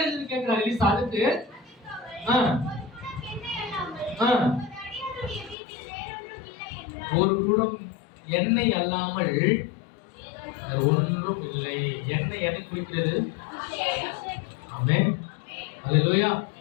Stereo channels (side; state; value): right; drops out; at 5.6 s